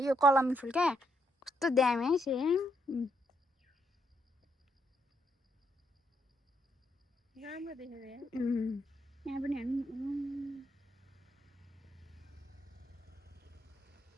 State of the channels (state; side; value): normal; both; correlation 0.76